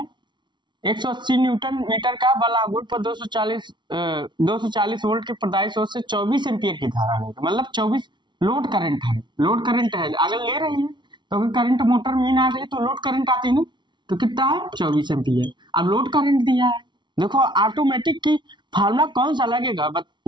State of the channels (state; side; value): late; left; 0.22 ms